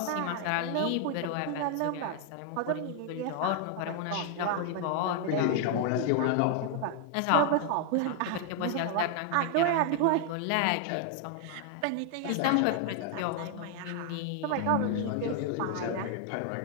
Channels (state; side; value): different; both; correlation 0.00